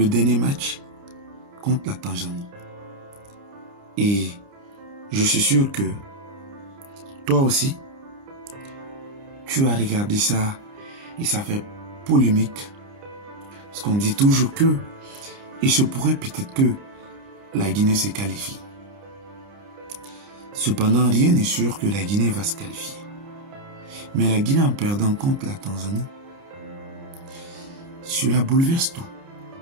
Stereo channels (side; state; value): left; late; 29 ms